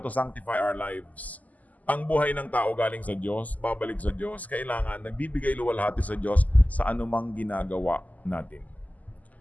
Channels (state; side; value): late; right; 0.077 ms